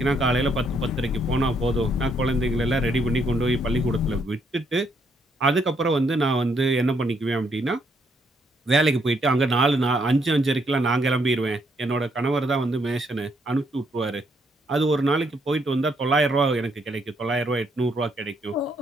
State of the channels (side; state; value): both; normal; correlation 0.73